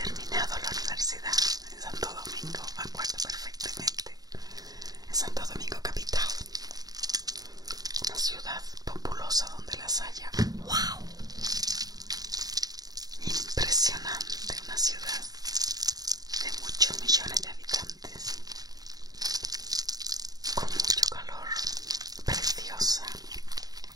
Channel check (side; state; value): left; late; 0.18 ms